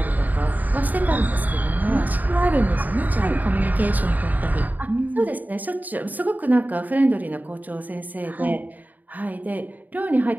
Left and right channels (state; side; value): late; left; 0.082 ms